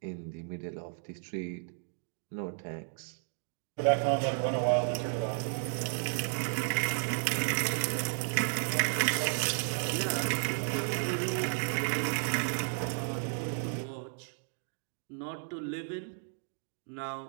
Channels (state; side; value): silent; left; 56 dB below the other